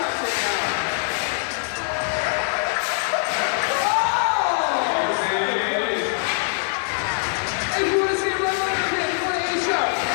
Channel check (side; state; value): right; silent; 63 dB below the other